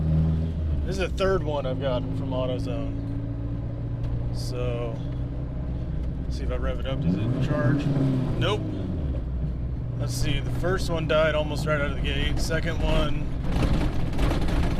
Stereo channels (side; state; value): both; identical; correlation 1.00